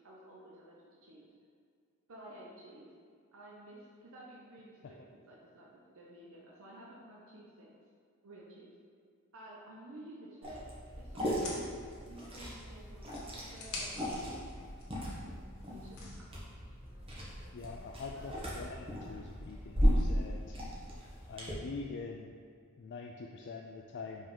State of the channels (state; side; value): normal; both; correlation 0.75